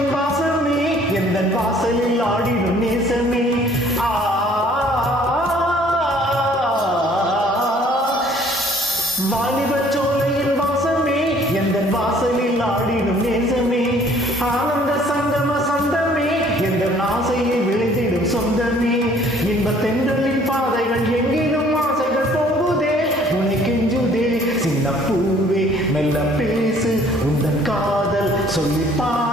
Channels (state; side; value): normal; both; correlation 0.57